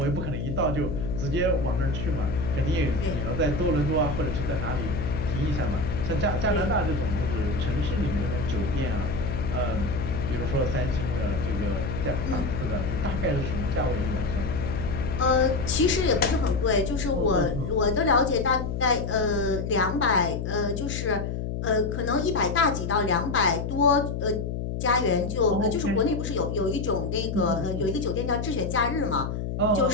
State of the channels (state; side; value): noise; left; hum, 3 dB below the sound